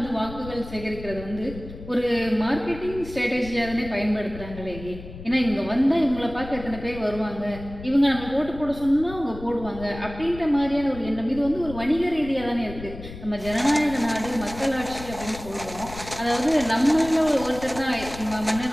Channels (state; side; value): noise; left; rumble, 13 dB below the sound